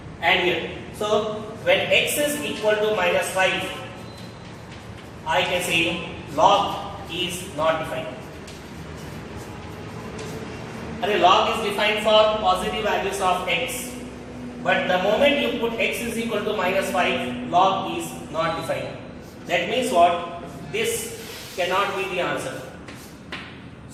Add here. So when x is equal to minus 5, I can say log is not defined. And log is defined for positive values of x. But the moment you put x is equal to minus 5, log is not defined. That means what? This cannot be the answer.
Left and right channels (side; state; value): both; identical; correlation 1.00